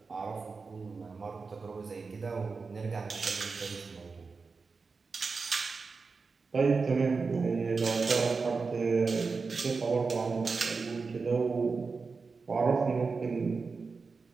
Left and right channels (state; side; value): quieter; left; 4.6 dB